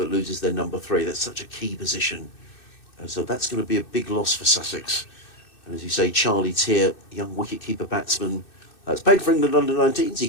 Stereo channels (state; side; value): late; right; 2.6 ms